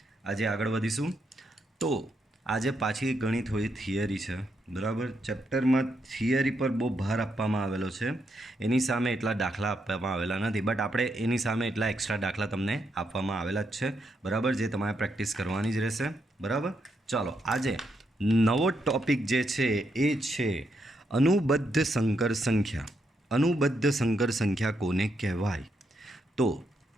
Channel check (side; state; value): both; normal; correlation 0.80